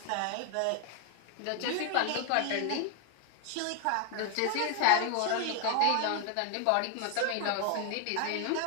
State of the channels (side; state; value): both; different; correlation 0.00